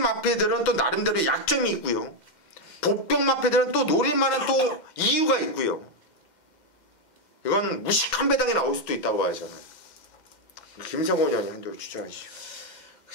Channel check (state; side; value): late; right; 2.1 ms